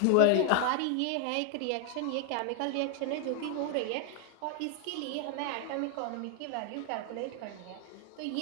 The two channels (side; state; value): both; different; correlation 0.01